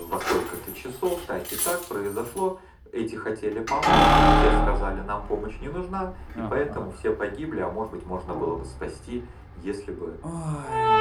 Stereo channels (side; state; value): both; identical; correlation 1.00